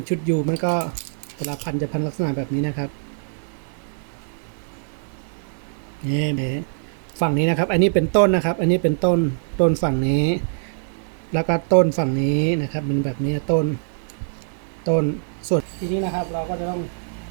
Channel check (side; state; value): left; silent; digital silence